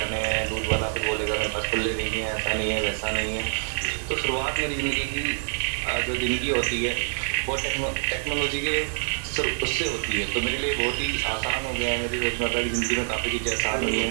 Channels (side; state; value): left; silent; digital silence